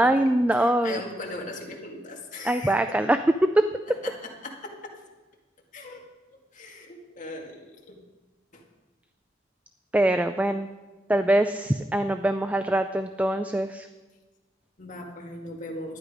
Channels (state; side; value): normal; both; correlation 0.85